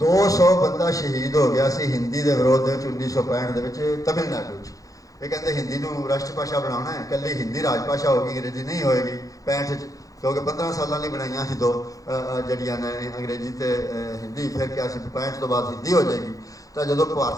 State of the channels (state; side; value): late; right; 0.17 ms